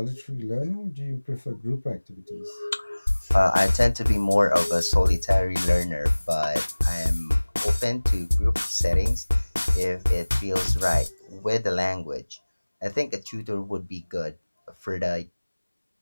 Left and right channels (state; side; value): inverted; both; correlation -1.00